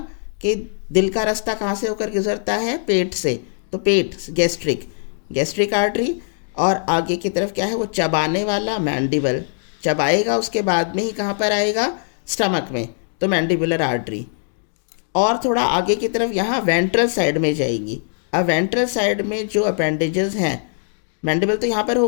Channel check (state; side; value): silent; right; digital silence